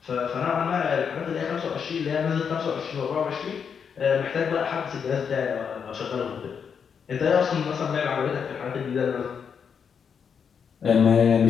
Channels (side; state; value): right; quieter; 6.8 dB